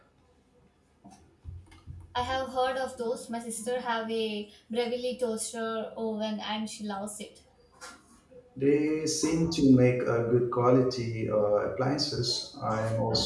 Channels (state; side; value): identical; both; correlation 1.00